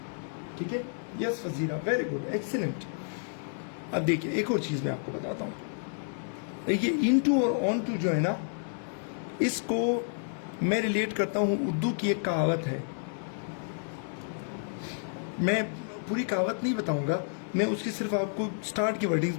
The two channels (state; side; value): silent; right; digital silence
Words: ठीक है, yes Fazira, very good, excellent. अब देखिए एक और चीज मैं आपको बताता हूं, देखिए इनटू और ऑन टू जो है ना, इसको मैं रिलेट करता हूं, उर्दू की एक कहावत है, मैं पूरी कहावत नहीं बताऊंगा, मैं उसकी सिर्फ आपको स्टार्ट की वर्डिंग्स